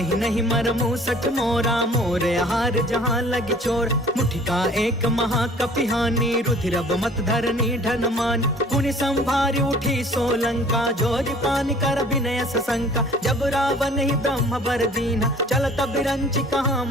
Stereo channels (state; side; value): normal; both; correlation 0.51